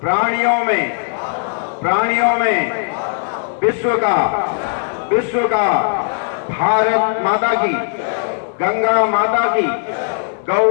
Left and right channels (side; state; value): right; silent; 68 dB below the other